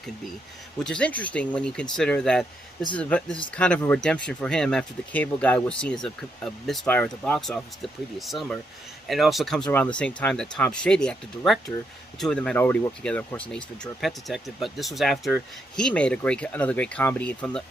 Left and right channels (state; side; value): normal; both; correlation 0.78